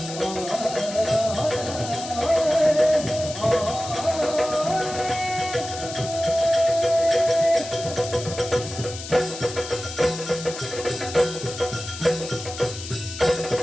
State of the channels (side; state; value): left; noise; hiss, 10 dB below the sound